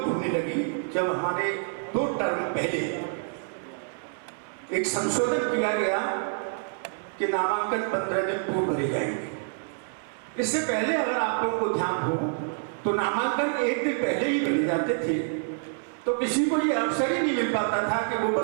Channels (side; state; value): left; silent; 60 dB below the other